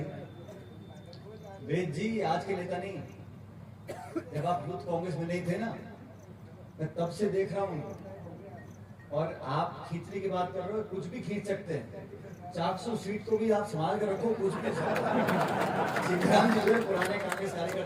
वेद जी आज के नेता नहीं, जब आप यूथ कांग्रेस में नहीं थे ना, मैं तब से देख रहा हूँ। और आप खींचने की बात कर रहे हो, कुछ भी खींच सकते हैं, 400 सीट को भी आप संभाल कर रखो, कुछ भी। सीताराम जी पुराने कांग्रेस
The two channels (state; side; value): identical; both; correlation 1.00